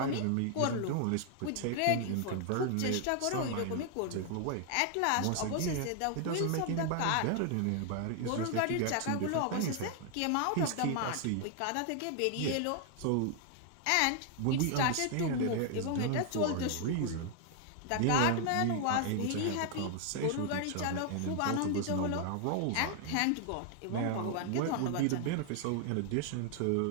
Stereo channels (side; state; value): both; different; correlation 0.00